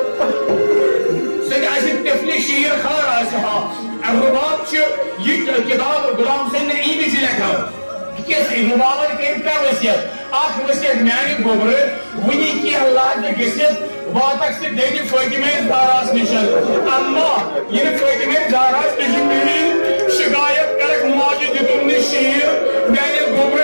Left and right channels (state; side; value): inverted; both; correlation -1.00